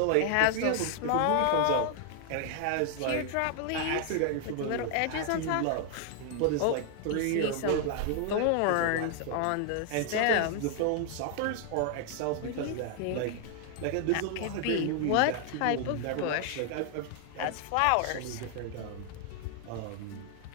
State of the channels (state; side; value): different; both; correlation 0.00